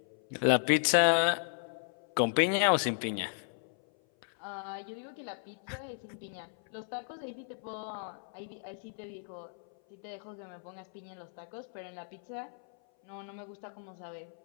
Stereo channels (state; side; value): silent; right; 55 dB below the other